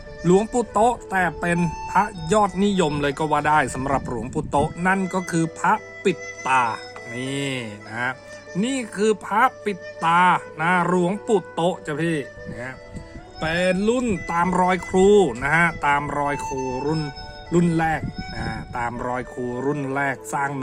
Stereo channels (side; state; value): both; identical; correlation 1.00